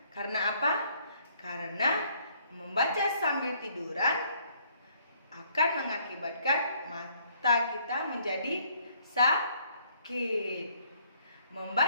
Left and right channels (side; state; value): both; inverted; correlation -0.64